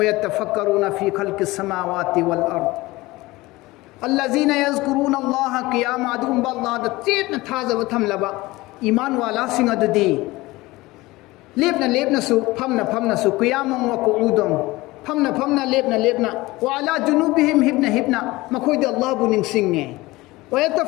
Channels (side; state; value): right; quieter; 20.2 dB